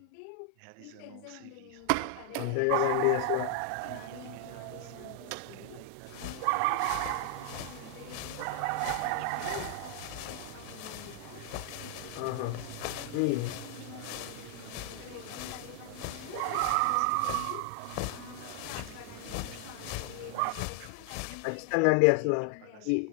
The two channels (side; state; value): both; different; correlation 0.00